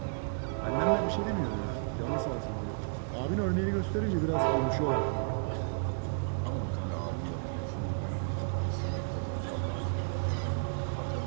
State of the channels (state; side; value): silent; left; 55 dB below the other